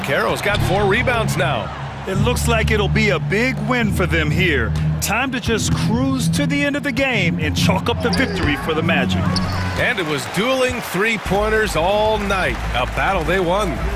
got 4 rebounds now. It looks like it'll be a big win for them here. Time to just cruise to the end of the game and chalk up the victory for the Magic. And it was dueling 3-pointers all night. A battle they won.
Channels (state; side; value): identical; both; correlation 1.00